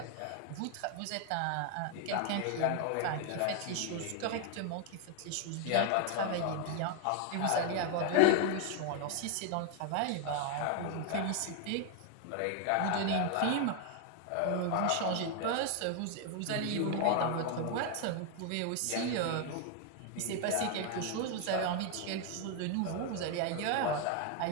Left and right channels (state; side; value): different; both; correlation 0.01